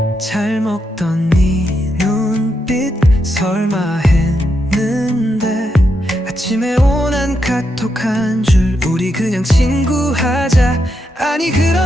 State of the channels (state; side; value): normal; both; correlation 0.83